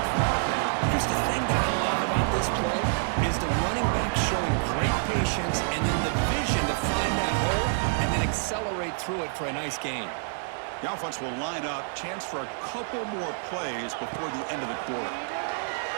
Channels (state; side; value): silent; left; digital silence